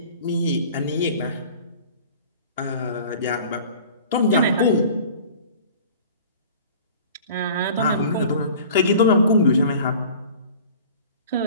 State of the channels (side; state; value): both; inverted; correlation -0.44